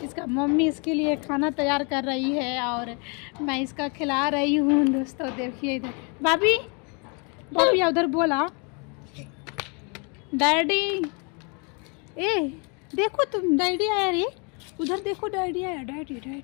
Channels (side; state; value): right; quieter; 34.2 dB